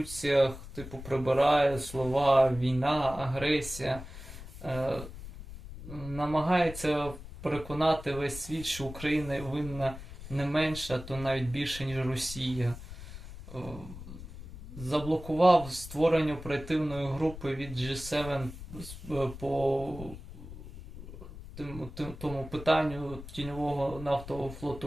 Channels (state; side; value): noise; left; rumble, 13 dB below the sound